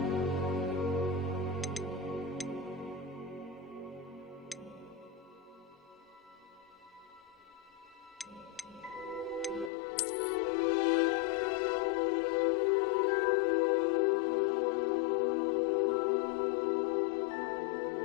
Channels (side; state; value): right; drops out; at 9.7 s